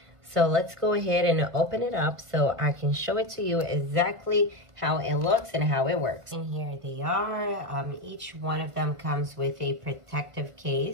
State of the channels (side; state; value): left; late; 1.3 ms